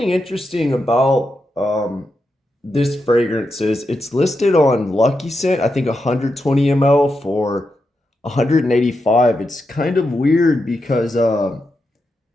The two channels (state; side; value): normal; both; correlation 0.86